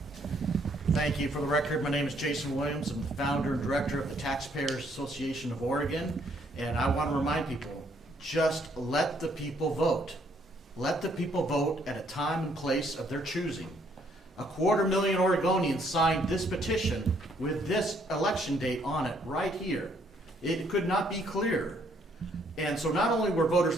Thank you. For the record, my name is Jason Williams. I'm the founder and director of the Taxpayers Association of Oregon, and I want to remind people, just let the people vote. Let the people vote at a time and place of their choosing. 250,000 Oregonians signed this petition with this election date on it right here. It could not be clearer. And so not only were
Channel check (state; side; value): normal; both; correlation 0.68